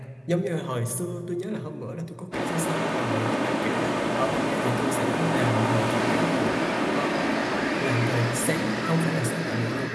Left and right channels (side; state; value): both; identical; correlation 1.00